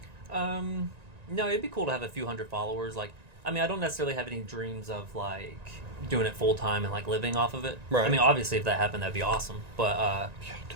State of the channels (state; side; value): late; left; 1.9 ms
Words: No, it'd be cool to have a few hundred followers. Like, I mean, I don't necessarily have any dreams of like doing it full time and like living off of it. Right. I mean, obviously, if that happened, that'd be awesome. But I